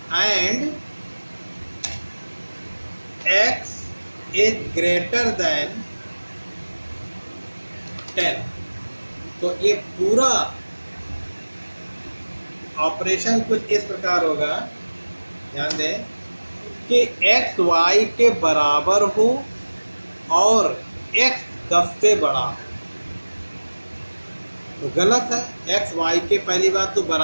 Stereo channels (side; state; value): both; inverted; correlation -1.00